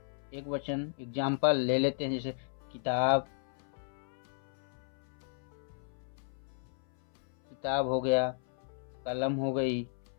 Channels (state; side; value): silent; right; 55 dB below the other